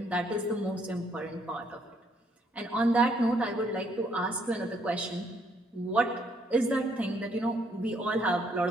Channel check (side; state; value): both; normal; correlation 0.69